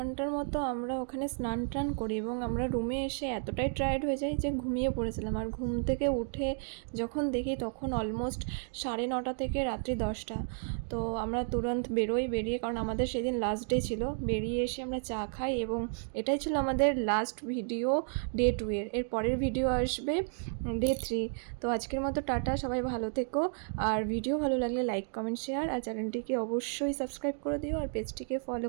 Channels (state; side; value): silent; left; digital silence